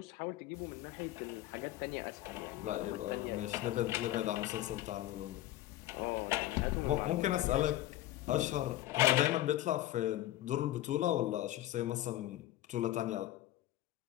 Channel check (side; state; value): right; quieter; 14.7 dB